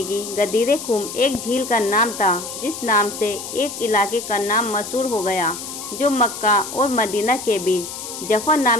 गदीर खुम एक झील का नाम था जिस नाम से एक इलाके का नाम मशहूर हो गया, जो मक्का और मदीना के बीच जफा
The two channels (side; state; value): left; noise; hiss, 9 dB below the sound